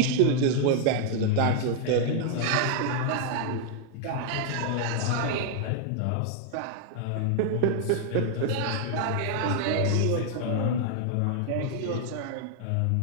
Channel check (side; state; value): both; different; correlation 0.00